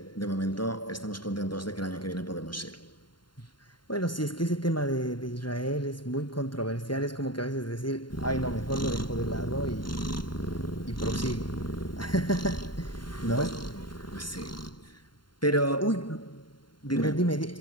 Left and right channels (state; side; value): late; right; 0.72 ms